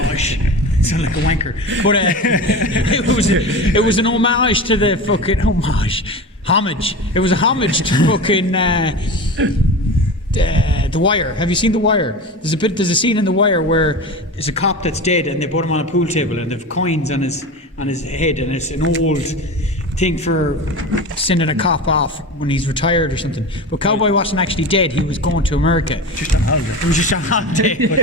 It sounded like a wanker. But it was an homage to the fucking homage. It was a homage to fucking The Wire. Have you seen The Wire? There's a scene in The Wire where there's a cop that's dead, and they put him on a pool table, and they've coins on his head, and it's an old thing for sending a cop off when he's retired or something. But Cowboy wasn't actually dead. He was going to America. Just on holiday. It was just on holiday.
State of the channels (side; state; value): both; normal; correlation 0.29